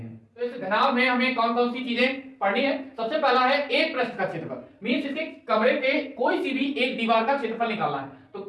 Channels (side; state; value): both; identical; correlation 1.00